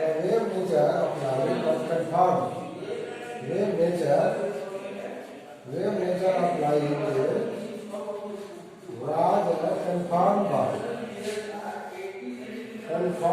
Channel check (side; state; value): both; identical; correlation 1.00